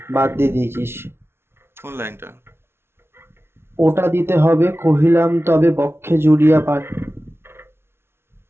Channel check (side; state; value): left; late; 0.12 ms